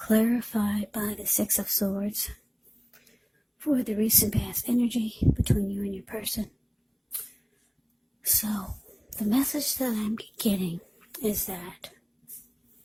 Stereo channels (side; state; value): both; identical; correlation 1.00